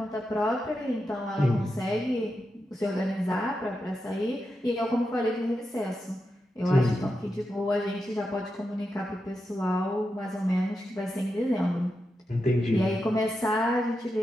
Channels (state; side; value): normal; both; correlation 0.88